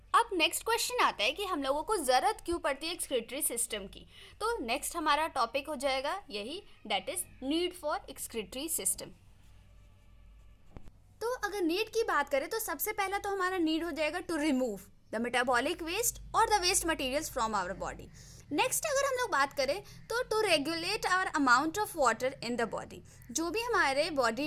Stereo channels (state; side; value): identical; both; correlation 1.00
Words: अब नेक्स्ट क्वेश्चन आता है कि हम लोगों को ज़रूरत क्यों पड़ती है एक्सक्रीटरी सिस्टम की। तो नेक्स्ट हमारा टॉपिक हो जाएगा यही, that is need for excretory system. तो अगर नीड की बात करें तो सबसे पहला तो हमारा नीड हो जाएगा to remove the metabolic waste और the waste materials from our body. Next अगर हम लोग बात करें तो to regulate our amount of water in the body, जो भी हमारे बॉडी